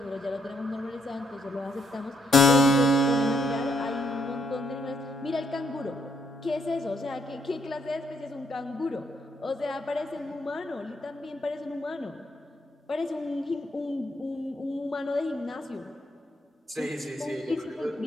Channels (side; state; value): both; normal; correlation 0.74